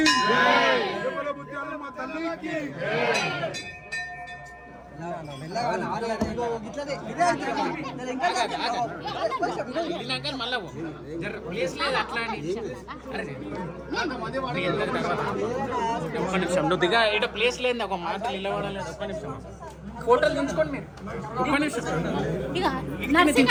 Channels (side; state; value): both; identical; correlation 1.00